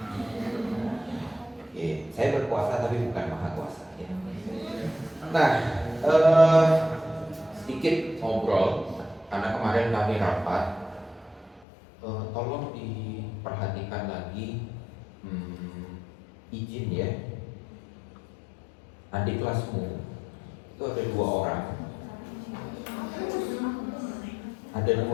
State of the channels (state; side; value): drops out; right; at 11.7 s